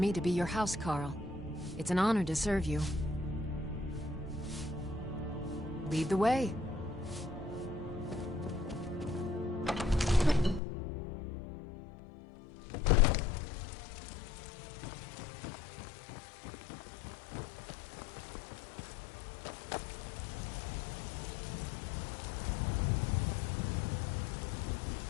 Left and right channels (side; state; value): right; drops out; at 10.6 s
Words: to be your housecarl. It's an honor to serve you. Lead the way.